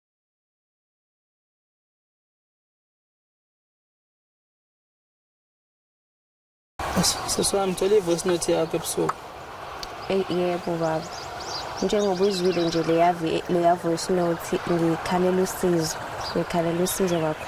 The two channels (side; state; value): both; identical; correlation 1.00